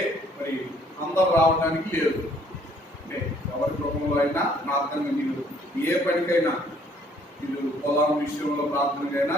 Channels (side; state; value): both; normal; correlation 0.62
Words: మరి అందరు రావడానికి లేదు. అంటే ఎవరి గృహంలో అయినా ప్రార్థన మీరు ఏ పనికైనా మీరు పొలం విషయంలో ప్రార్థనకైనా